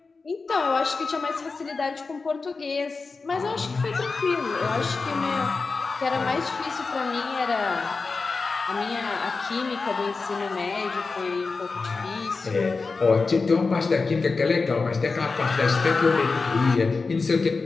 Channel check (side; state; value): right; quieter; 4.2 dB